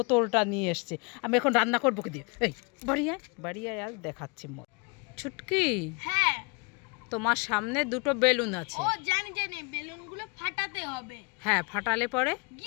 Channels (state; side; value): quieter; right; 31.9 dB